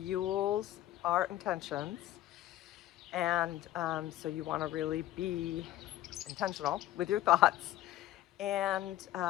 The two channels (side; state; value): right; quieter; 14.2 dB